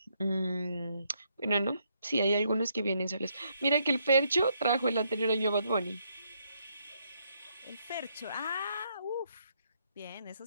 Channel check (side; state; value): both; inverted; correlation -0.74